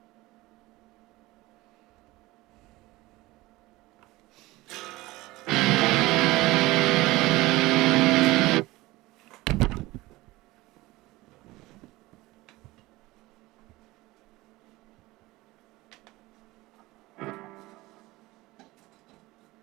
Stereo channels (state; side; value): quieter; left; 19.7 dB